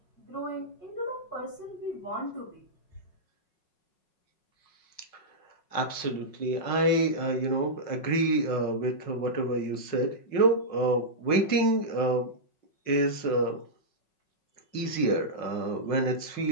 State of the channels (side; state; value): right; late; 5.5 ms